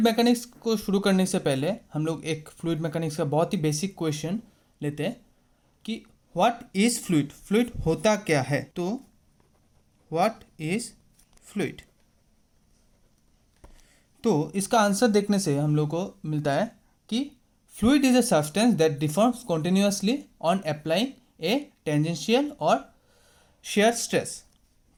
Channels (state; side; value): identical; both; correlation 1.00